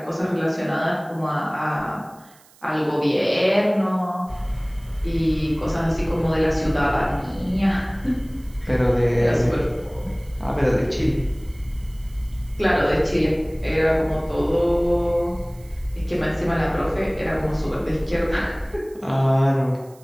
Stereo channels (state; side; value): noise; right; hiss, 27 dB below the sound